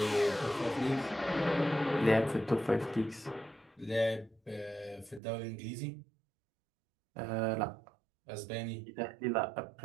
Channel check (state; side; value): drops out; left; at 5.2 s